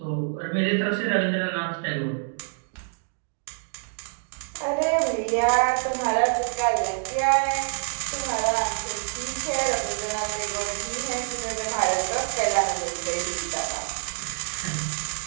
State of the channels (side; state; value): left; silent; digital silence